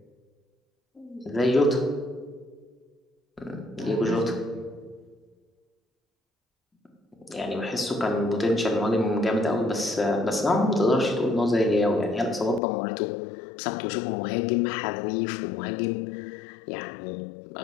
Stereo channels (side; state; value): right; drops out; at 12.6 s